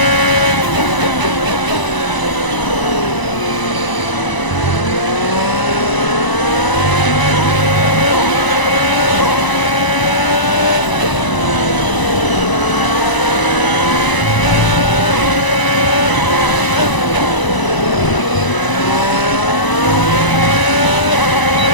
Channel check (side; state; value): right; late; 1.0 ms